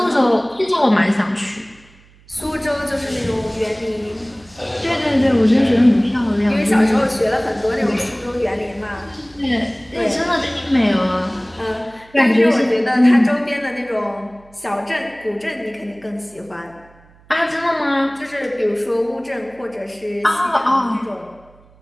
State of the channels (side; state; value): right; noise; hum, 28 dB below the sound